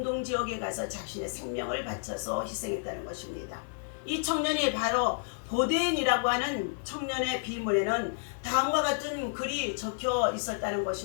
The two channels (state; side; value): silent; right; digital silence